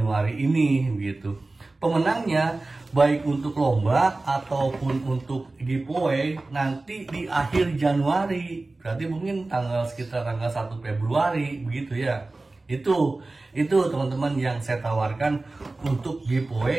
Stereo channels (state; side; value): quieter; left; 3.2 dB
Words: ini gitu. Pemenangnya baik untuk lomba ataupun untuk giveaway nanti di akhir Januari, berarti mungkin sekitar tanggal 1 Februari begitu ya. Itu teman-teman yang saya tawarkan untuk